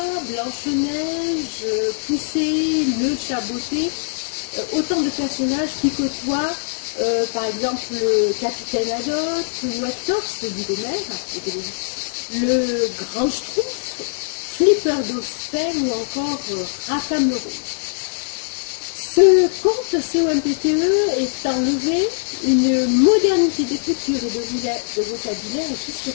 Blanche-Neige, Poussée, le Chaboté, autant de personnages qui côtoient par exemple le capitaine Haddock ou Hector, celui d'Homère, le grand Schtroumpf, Flipper d'Osphène ou encore Rackham le Rouge. Ce conte COMPTE est enlevé une modernité d'écriture et de vocabulaire qui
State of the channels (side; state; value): right; silent; digital silence